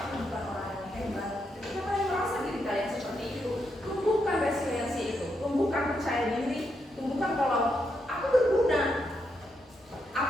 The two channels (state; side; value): normal; both; correlation 0.81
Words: bukan orang yang hebat. Ketika kalian merasa diri kalian seperti itu, tumbuhkan resiliensi itu, tumbuhkan percaya diri, tumbuhkan kalau aku berguna, aku